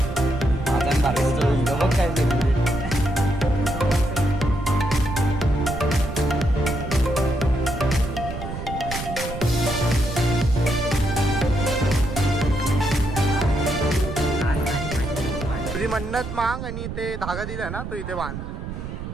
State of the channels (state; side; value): noise; right; rumble, 7 dB below the sound